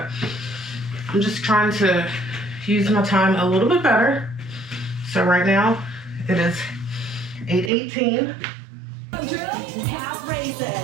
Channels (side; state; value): left; drops out; at 7.7 s